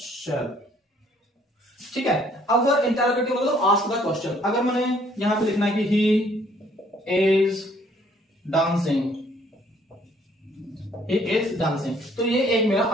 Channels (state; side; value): normal; both; correlation 0.62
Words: shall। ठीक है। अब इंटरोगेटिव मतलब आस्क द क्वेश्चन। अगर मैंने यहां पे लिखना है कि he is dancing, he is dancing, तो ये एक मेरा